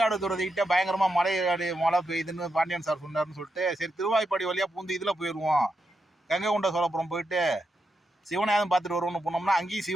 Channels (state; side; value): normal; both; correlation 0.85